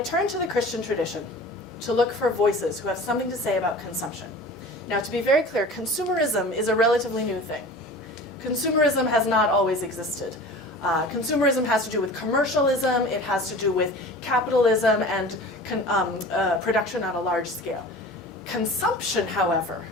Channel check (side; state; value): both; normal; correlation 0.39